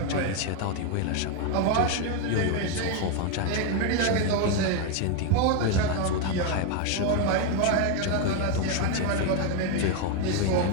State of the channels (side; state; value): both; different; correlation 0.01